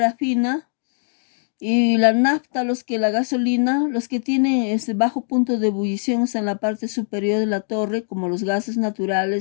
y la nafta, la gasolina, los que tienen ese bajo punto de ebullición están en la parte superior de la torre, como los gases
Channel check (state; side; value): silent; right; digital silence